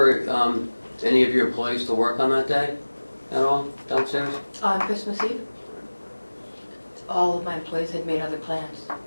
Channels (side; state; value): both; inverted; correlation -1.00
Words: any of your employees to work on that day at all downstairs? On Christmas Eve, all of my employees had made other plans.